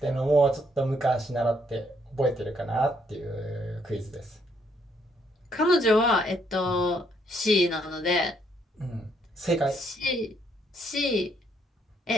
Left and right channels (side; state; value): both; normal; correlation 0.71